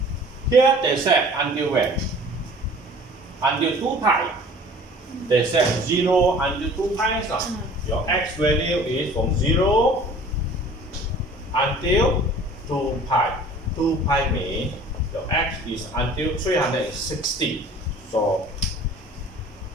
Here they said until when? Until 2 pi. They said 0 until 2 pi. So your x value is from 0 until 2 pi. 2 pi means your x is until 360. So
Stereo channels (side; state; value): both; normal; correlation 0.47